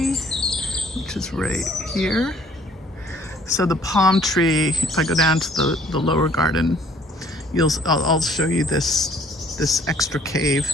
which is right here. So the palm tree, if I go down to the lower garden, I'll show you this extra cave.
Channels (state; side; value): normal; both; correlation 0.58